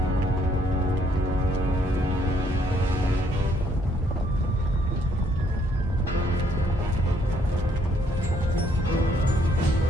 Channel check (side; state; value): both; normal; correlation 0.68